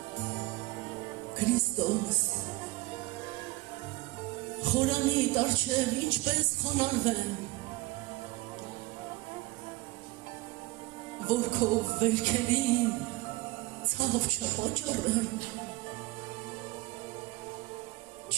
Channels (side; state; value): left; quieter; 20.8 dB